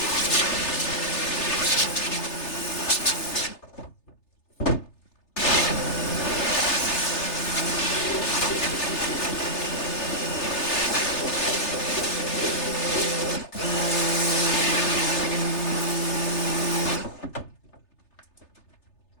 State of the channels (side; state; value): right; late; 3.3 ms